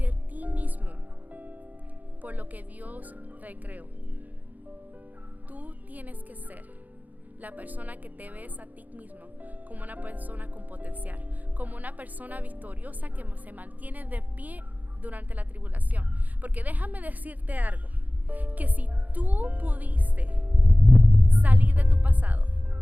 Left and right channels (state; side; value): late; left; 0.080 ms